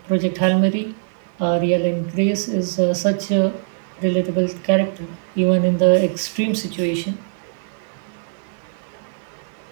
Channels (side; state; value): left; silent; digital silence